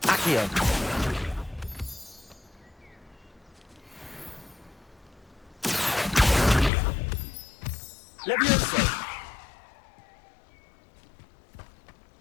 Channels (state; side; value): drops out; right; at 6.7 s